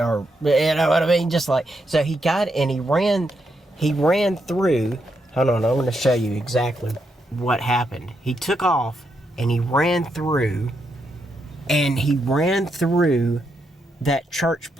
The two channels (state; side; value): normal; both; correlation 0.81